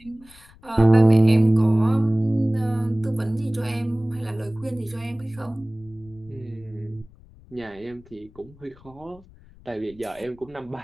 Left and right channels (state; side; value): noise; left; rumble, 25 dB below the sound